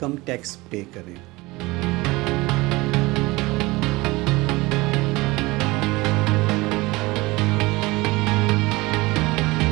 टैक्स पे करें।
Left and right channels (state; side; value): quieter; left; 21.8 dB